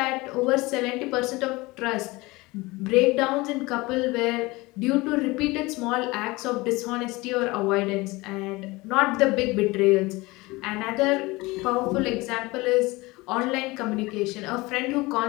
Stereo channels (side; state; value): right; quieter; 22.3 dB